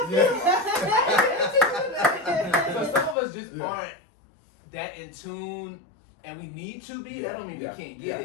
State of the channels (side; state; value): right; drops out; at 3.2 s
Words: I feel. So some of us just aren't that in tune. And we need to be. That don't mean we can't get